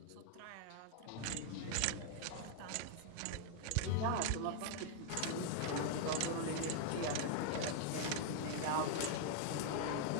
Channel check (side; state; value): both; different; correlation 0.00